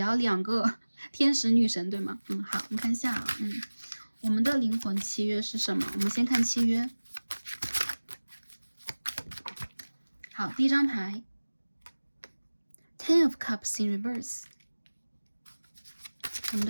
还有2个天使女神，对吗？好，我们看一下，我们的灵魂契约是什么？我们先看契约。好，第一张牌 Ten of Cups in reverse， 我们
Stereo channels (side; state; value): both; inverted; correlation -1.00